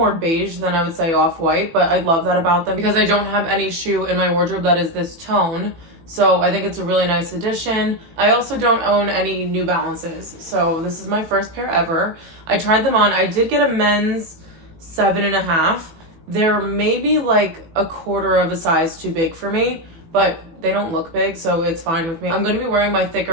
beige than I would say off-white, but I love that about them because I don't have any shoe in my wardrobe that is this tone. So I think it's a really nice addition. I also don't own any New Balances. So this is my first pair ever. I tried them on. I did get a men's 7.5. They're maybe like a quarter of a size too big for me, but they don't look big, so it's fine with me. I'm going to be wearing my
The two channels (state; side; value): late; left; 18 ms